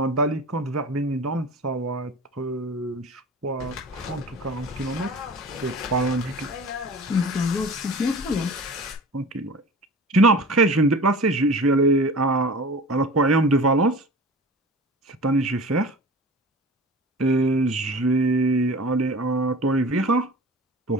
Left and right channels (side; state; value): both; normal; correlation 0.38